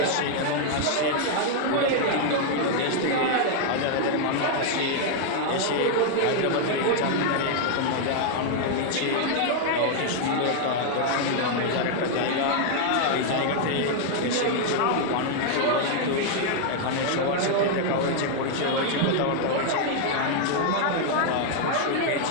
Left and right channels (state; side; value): different; both; correlation 0.00